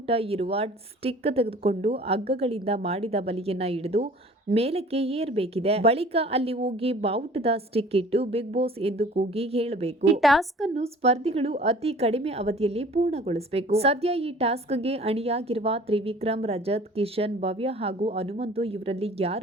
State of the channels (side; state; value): both; normal; correlation 0.48